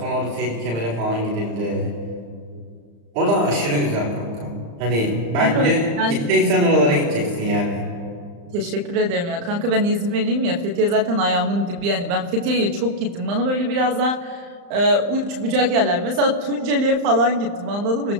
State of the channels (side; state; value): left; late; 35 ms